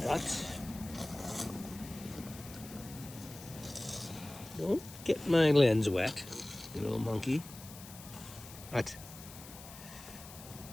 What? Don't get my lens wet, you little monkey. What?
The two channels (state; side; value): noise; left; hiss, 16 dB below the sound